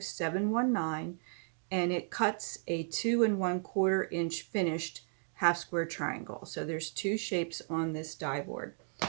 and it cuts a 2 1/4 inch finished half square triangle. So there's 2 shapes on this die board.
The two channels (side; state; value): left; silent; 55 dB below the other